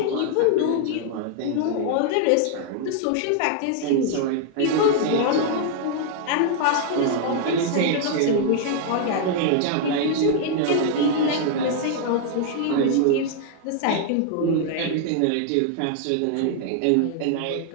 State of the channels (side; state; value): both; different; correlation 0.00